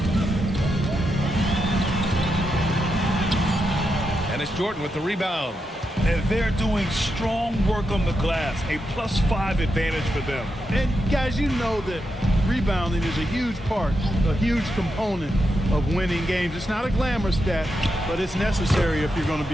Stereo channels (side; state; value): both; normal; correlation 0.85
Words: And it's Jordan with the rebound. And they're doing strong work on the glass. A +5 advantage for them. And guys, you know that rebounding is a huge part, a huge component of winning games. It's not a glamour stat, but it's necessary if you're going to